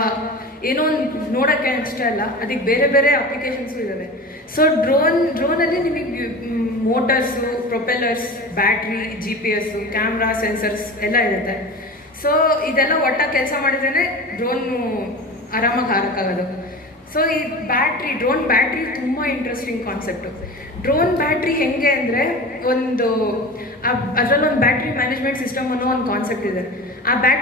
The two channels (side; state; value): both; normal; correlation 0.33